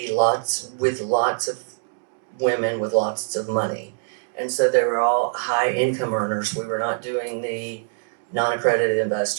lots of women with lots of money. And so they were all high income earners. We were not doing the non-accredited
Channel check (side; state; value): left; silent; digital silence